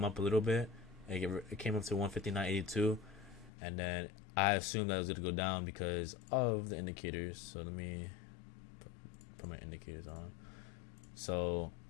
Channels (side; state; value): right; drops out; at 3.5 s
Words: up a little bit. It came up to 159.82, and then I assumed that it was gonna go down because of the indicators. So let me put my indicators on. So